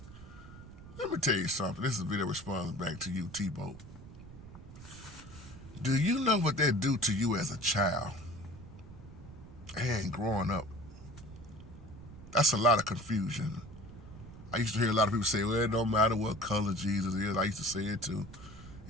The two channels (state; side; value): noise; right; rumble, 16 dB below the sound